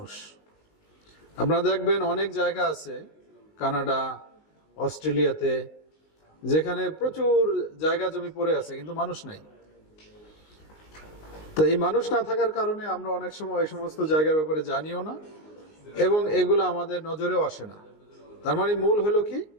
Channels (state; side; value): late; right; 19 ms